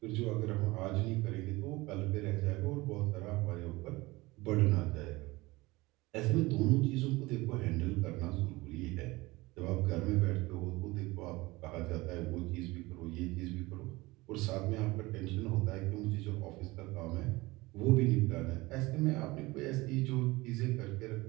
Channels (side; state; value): left; quieter; 21.4 dB